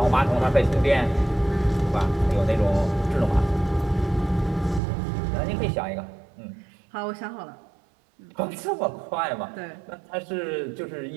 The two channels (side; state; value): left; drops out; at 4.8 s